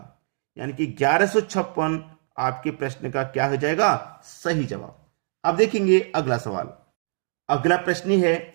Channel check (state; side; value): silent; left; digital silence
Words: यानी कि 1156 आपके प्रश्न का क्या हो जाएगा? सही जवाब। अब देखेंगे अगला सवाल। अगला प्रश्न है,